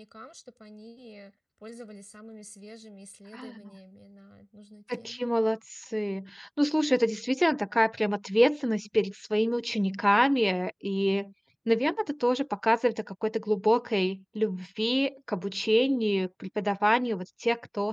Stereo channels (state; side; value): identical; both; correlation 1.00